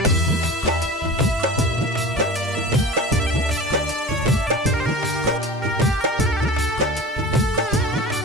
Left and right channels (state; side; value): normal; both; correlation 0.37